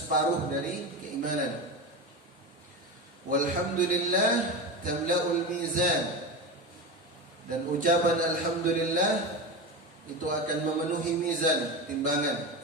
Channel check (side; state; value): both; normal; correlation 0.22